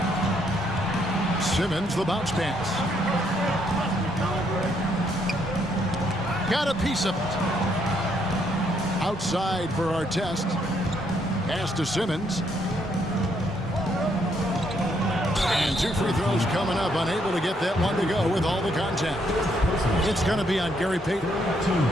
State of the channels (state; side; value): normal; both; correlation 0.72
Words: Simmons, the bounce pass. Got a piece of it. Outside for Artest. Pass to Simmons. And 2 free throws coming up. Unable to get that one to go with all the contact. It's going to be on Gary Payton.